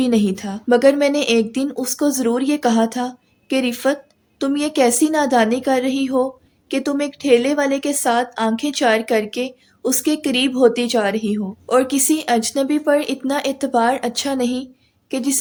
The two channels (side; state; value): both; identical; correlation 1.00